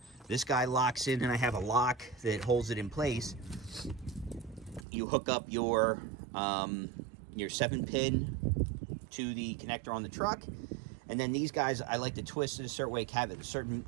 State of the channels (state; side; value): drops out; left; at 4.9 s